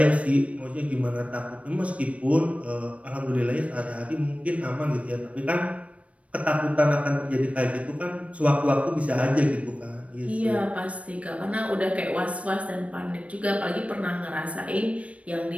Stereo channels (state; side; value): late; left; 0.064 ms